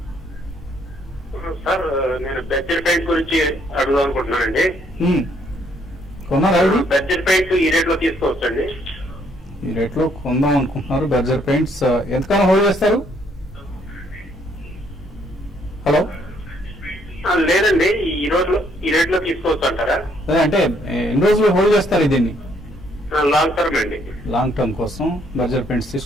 సార్, నేను బడ్జెట్ పెయింట్ గురించి అడుగుదాం అనుకుంటున్నానండి. కొన్నారా? బడ్జెట్ పెయింట్ ఈ రేట్ లో తీసుకోవచ్చండి? ఈ రేట్ లో కొందాం అనుకుంటున్నారు. బర్జర్ పెయింట్స్ ఎంతకాలం హోల్డ్ చేస్తారు? హలో, లేదండి, ఈ రేట్ లో తీసుకోవచ్చు అంటారా? అంటే ఎన్ని రోజులు హోల్డ్ చేస్తారు దీన్ని? లాంగ్ టర్మ్ అండి. లాంగ్ టర్మ్ కోసం బర్జర్ పెయింట్స్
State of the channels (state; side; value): normal; both; correlation 0.68